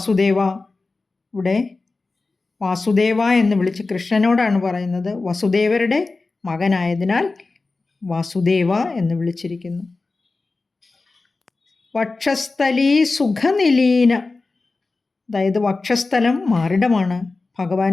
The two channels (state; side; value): quieter; right; 3.7 dB